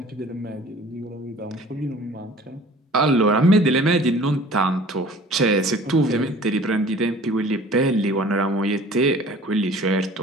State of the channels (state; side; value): normal; both; correlation 0.48